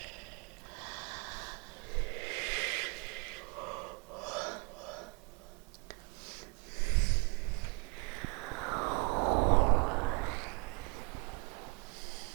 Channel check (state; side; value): quieter; left; 32.9 dB